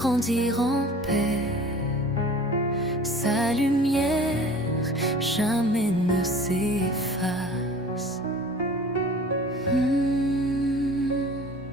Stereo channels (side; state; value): both; normal; correlation 0.44